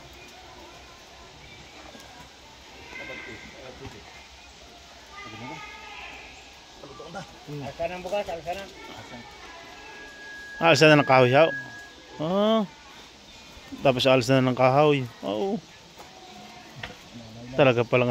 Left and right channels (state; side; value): identical; both; correlation 1.00